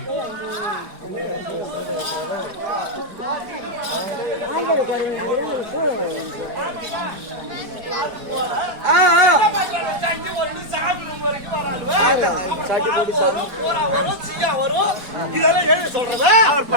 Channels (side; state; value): left; late; 4.6 ms